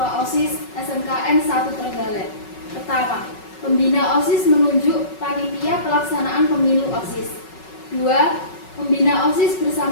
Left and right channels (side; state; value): right; late; 5.4 ms